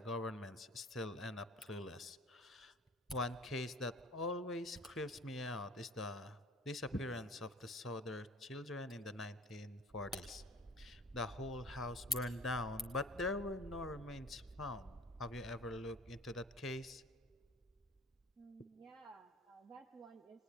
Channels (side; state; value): both; normal; correlation 0.46